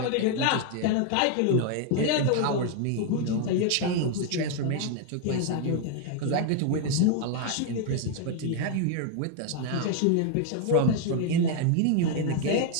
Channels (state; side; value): different; both; correlation 0.00